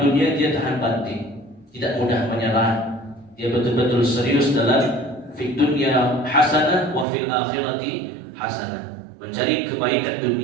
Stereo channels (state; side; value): drops out; left; at 7.1 s